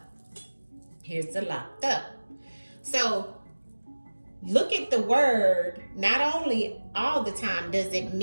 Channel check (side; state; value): both; inverted; correlation -1.00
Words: Here's the locked up. So look at the word. Not only all the time does it